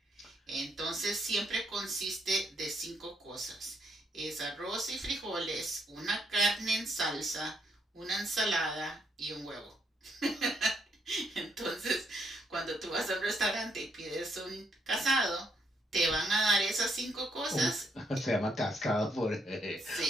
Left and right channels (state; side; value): normal; both; correlation 0.74